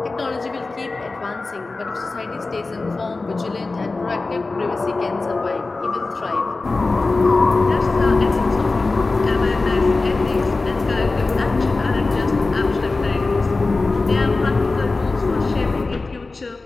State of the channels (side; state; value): right; quieter; 3.5 dB